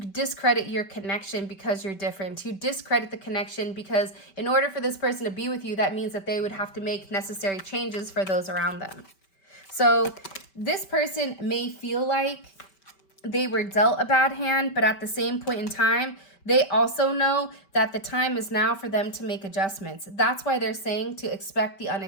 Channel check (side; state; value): right; late; 5.2 ms